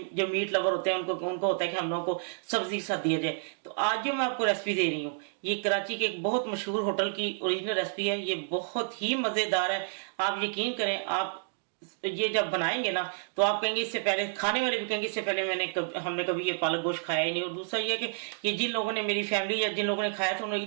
जो मीट लवर होते हैं उनको होता है कि हम लोगों को सब्जी के साथ दिया जाए। तो आज जो मैं आपको रेसिपी दे रही हूँ ये कराची के एक बहुत मशहूर होटल की ओरिजिनल रेसिपी है। ये बहुत ही मजेदार है। आप यकीन करें, आप ये जब बनाएंगे ना तो आप कहेंगे, इससे पहले खाने वाले भी कहेंगे इससे पहले हमने कभी ये पालक गोश्त खाया ही नहीं। और दूसरा ये कि ये जिन लोगों ने, मेरी फैमिली या जिन लोगों ने खाया था, उन्होंने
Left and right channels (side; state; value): left; silent; digital silence